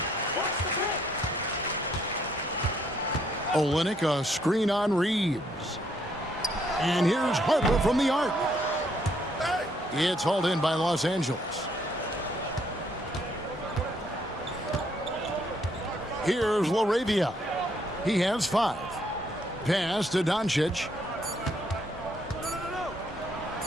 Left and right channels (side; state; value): both; normal; correlation 0.70